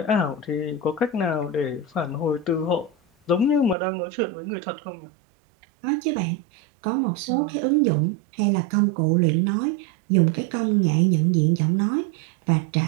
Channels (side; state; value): left; drops out; at 3.8 s